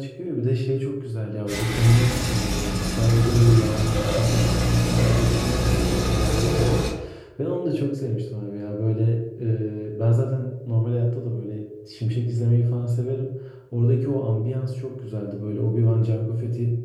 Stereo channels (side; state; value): both; identical; correlation 1.00